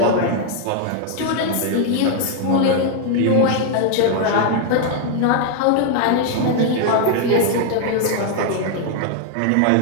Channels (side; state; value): both; different; correlation 0.00